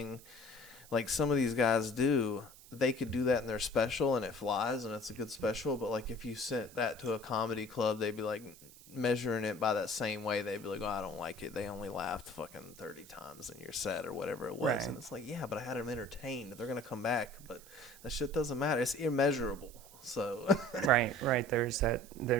like some of these guys do, they could do that in their special and it flies and it's a good special. But like if you sent that to a comedy club, they'd be like measuring it by that same way. They'd be like, oh, I don't like it. They only laughed fucking 30 times in your set or whatever it was. And it's like, yeah, but I had them entertained. They're going to come back. But that shit doesn't matter. It's immeasurable. So right. There's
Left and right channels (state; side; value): noise; right; hiss, 20 dB below the sound